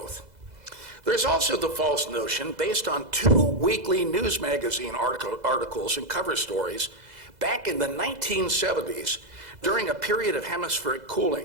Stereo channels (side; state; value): left; late; 2.0 ms